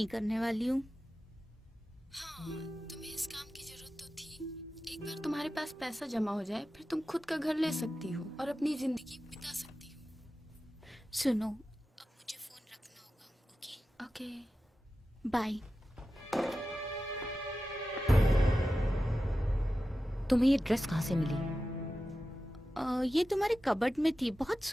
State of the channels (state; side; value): normal; both; correlation 0.93